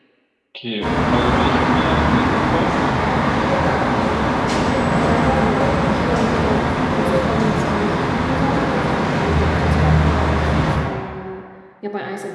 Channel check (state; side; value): identical; both; correlation 1.00